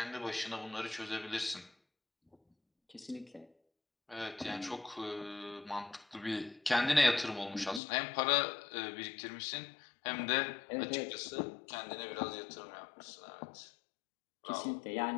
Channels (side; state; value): right; drops out; at 7.8 s